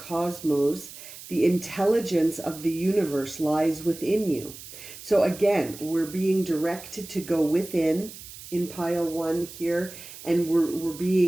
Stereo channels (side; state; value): right; noise; hiss, 15 dB below the sound